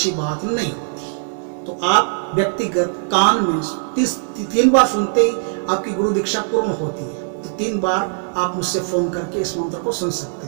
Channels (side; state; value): left; silent; digital silence